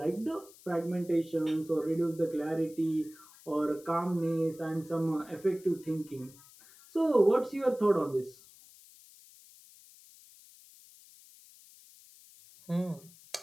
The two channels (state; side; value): noise; left; hiss, 23 dB below the sound